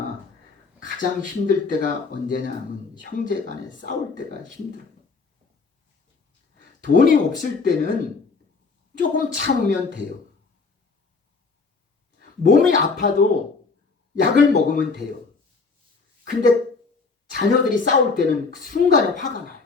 가장 힘들 때가 언제냐 하면 형제 간에 싸울 때가 힘들어요. 돈이 없을 때는 조금 참으면 돼요. 몸이 아파도 약을 먹으면 돼요. 근데 자녀들이 싸울 때는 그 순간에 화가 나요.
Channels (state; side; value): quieter; right; 4.4 dB